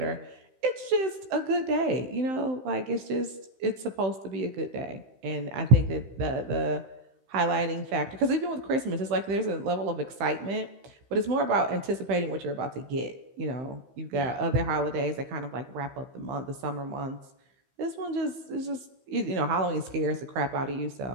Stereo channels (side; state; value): left; late; 15 ms